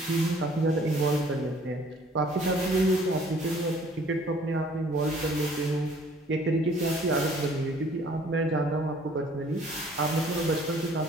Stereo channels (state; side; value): normal; both; correlation 0.56